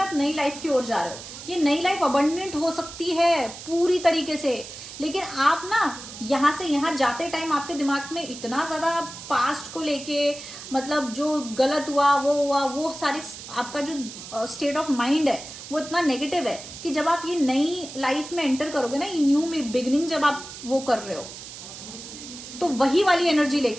आप नई लाइफ की ओर जा रहे हो। ये नई लाइफ अबंडेंट हो सकती है पूरी तरीके से, लेकिन आप ना यहां से यहां जाते टाइम आपके दिमाग में इतना ज्यादा पास्ट को लेके, मतलब जो गलत हुआ, वो सारी, आपका जो स्टेट ऑफ माइंड है वो इतना नेगेटिव है कि जब आप ये नई लाइफ में एंटर करोगे ना, ये न्यू बिगिनिंग जब आप वो कर रहे हो, तो वही वाली एनर्जी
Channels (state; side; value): noise; right; hiss, 13 dB below the sound